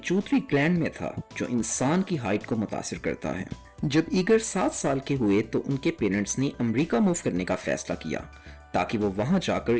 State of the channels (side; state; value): both; identical; correlation 1.00